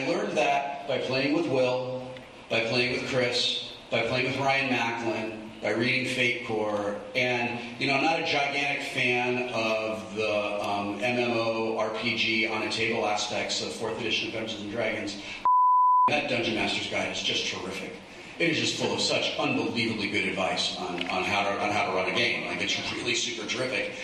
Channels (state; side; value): identical; both; correlation 1.00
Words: learned that by playing with Will, by playing with Chris, by playing with Ryan Macklin, by reading Fate Core, and I'm not a gigantic fan of the MMO RPG on a table aspects of 4th edition of Dungeons and Dragons. That Dungeon Master's Guide is just terrific. It is just full of such unbelievably good advice on how to run a game. Like, it's really super terrific.